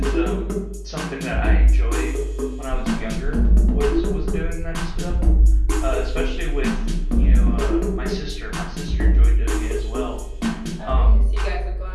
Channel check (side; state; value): both; identical; correlation 1.00